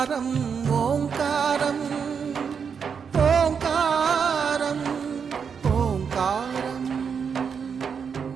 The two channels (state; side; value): quieter; left; 6.5 dB